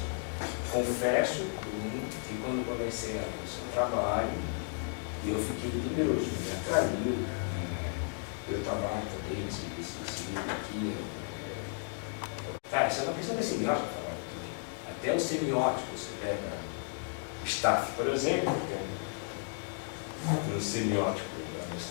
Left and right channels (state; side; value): silent; right; 55 dB below the other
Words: Confesso que quando comecei a ver o seu trabalho, eu fiquei temeroso, me atraiu. Eu trabalho também nesse livro aqui. Cara, isso é uma questão de semiótica, até os semióticos, você pega o Staff, por exemplo, que é um semiótico da